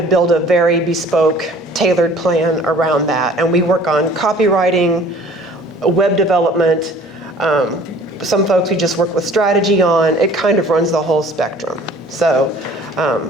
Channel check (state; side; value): normal; both; correlation 0.50